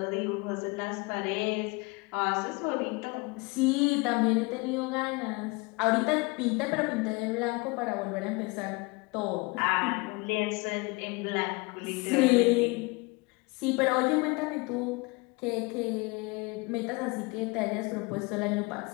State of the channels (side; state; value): right; quieter; 26.7 dB